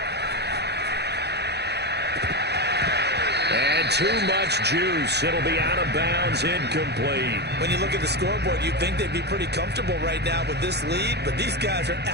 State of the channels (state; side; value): late; left; 0.48 ms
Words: And too much juice. It'll be out of bounds, incomplete. When you look at the scoreboard, you'd think they'd be pretty comfortable right now with this lead, but these guys are